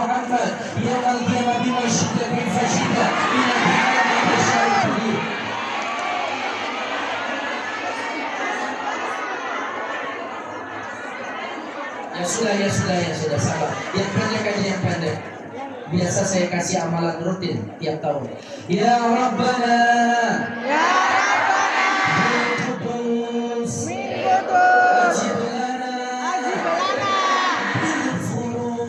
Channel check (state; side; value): identical; both; correlation 1.00